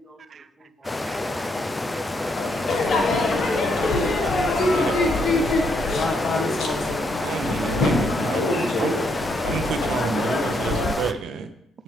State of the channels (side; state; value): both; normal; correlation 0.75